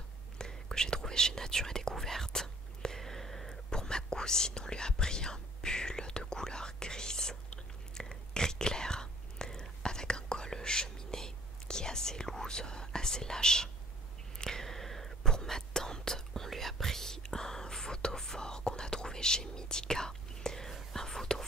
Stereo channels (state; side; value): normal; both; correlation 0.56